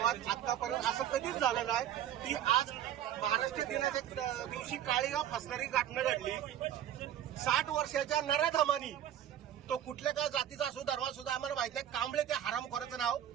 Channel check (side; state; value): left; quieter; 10.9 dB